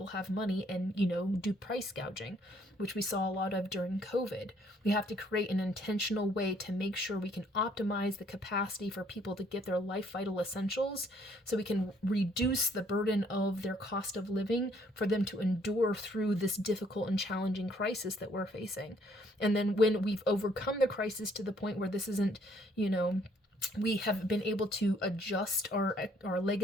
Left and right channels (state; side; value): normal; both; correlation 0.65